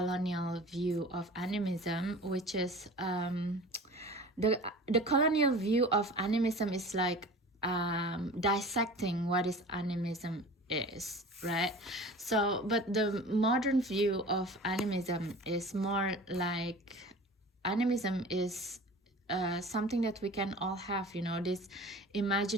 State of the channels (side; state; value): both; normal; correlation 0.39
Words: view of animism, which is the colonial view of animism is like dissecting what is animism is, right? So but the modern view of animism is more like, animism is something that we can all have, you know, this